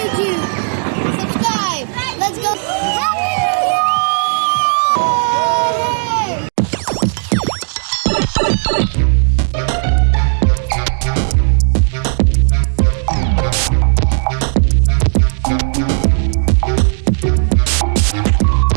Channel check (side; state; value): left; silent; 67 dB below the other